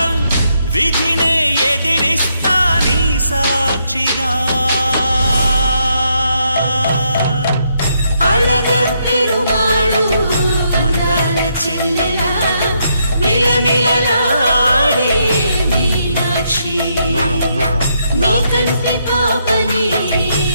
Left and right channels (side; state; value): both; inverted; correlation -0.76